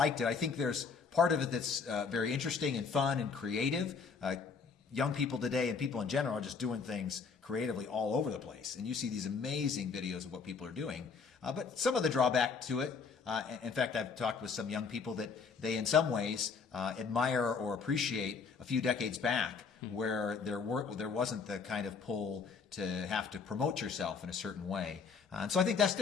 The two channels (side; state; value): right; quieter; 5.4 dB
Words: it. I think there's part of it that's very interesting and fun and creative. Young people today and people in general are just doing things creatively all over the place. And you see these amazing videos of what people are doing. But some of the drawback to it, in fact, I've talked with some young people that they in some ways admire or appreciate a few decades back, where there wasn't the kind of pull to have to promote yourself in a certain way. And so I think that's